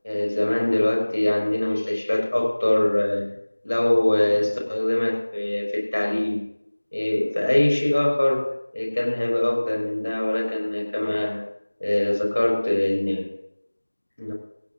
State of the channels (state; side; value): inverted; both; correlation -1.00